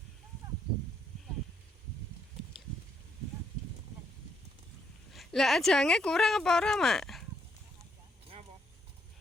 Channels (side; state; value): both; normal; correlation 0.74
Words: Lah ajange kurang apa ora, Mak? Ngapa?